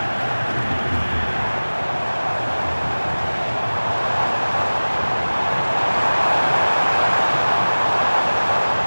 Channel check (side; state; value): both; inverted; correlation -1.00